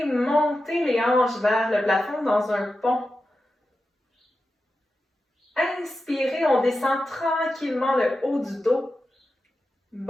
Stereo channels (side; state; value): both; normal; correlation 0.91